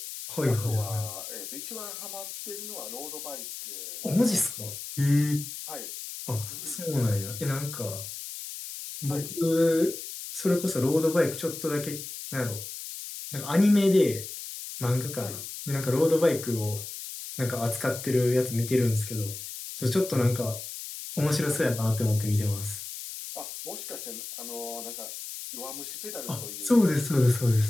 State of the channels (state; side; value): noise; left; hiss, 9 dB below the sound